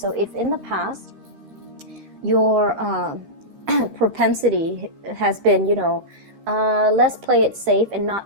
if in the past your propensity has been, let's play it safe and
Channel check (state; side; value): late; left; 13 ms